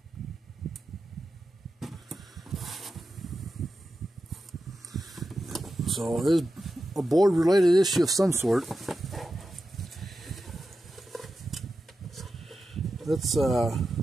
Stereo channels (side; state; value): both; normal; correlation 0.91